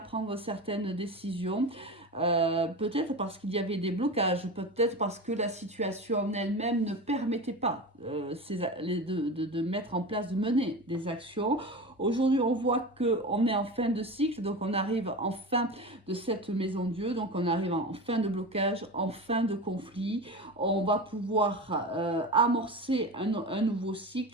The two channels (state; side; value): normal; both; correlation 0.27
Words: certaines décisions. Peut-être parce qu'il y avait des blocages, peut-être parce que la situation en elle-même ne permettait pas de mettre en place, de mener des actions. Aujourd'hui, on voit qu'on est en fin de cycle, donc on arrive en fin de cette maison Dieu, donc on arrive en fin de blocage, en fin de conflit. On va pouvoir amorcer un nouveau